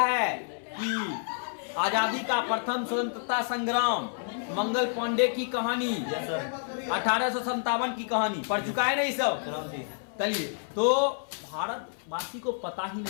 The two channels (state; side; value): silent; right; 59 dB below the other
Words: कि आजादी का प्रथम स्वतंत्रता संग्राम, मंगल पांडे की कहानी, 1857 की कहानी पढ़ चुका है ना ये सब। चलिए, तो भारतवासी को पता ही